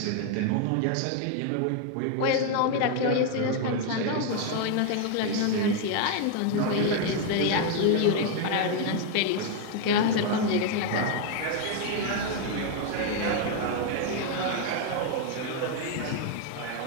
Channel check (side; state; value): both; different; correlation 0.00